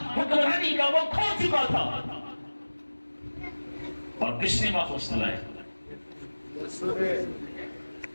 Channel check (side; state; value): both; inverted; correlation -1.00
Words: حکمرانی کا وہ کھو چکا تھا. اور کس نے واپس لائے؟